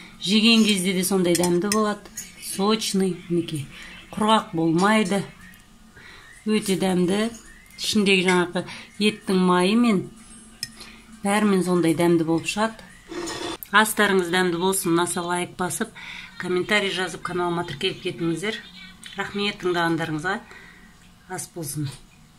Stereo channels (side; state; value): both; identical; correlation 1.00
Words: Жеген кезде де сондай дәмді болады. Сочный, мінекей, құрғақ болмайды. Өте дәмді. Ішіндегі жаңағы еттің майы мен бәрімен сондай дәмді болып шығады. Астарыңыз дәмді болсын, ұнаса лайк басып, комментарий жазып, каналыма тіркеліп кетіңіздер. Рахмет, тыңдағандарыңызға. Ас болсын.